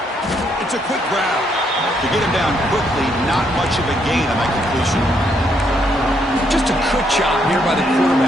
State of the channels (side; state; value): both; normal; correlation 0.73